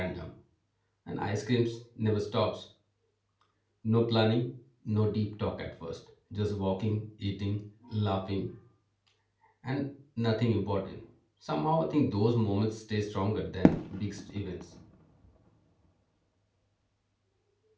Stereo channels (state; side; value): identical; both; correlation 1.00